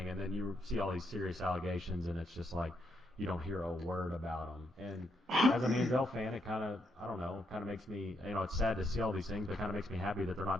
and then you see all these serious allegations, and it's just like you don't hear a word about him. And as a Manziel fan, it kind of makes me, it's sad to see all these things, but it kind of makes me happy that they're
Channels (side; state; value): both; normal; correlation 0.78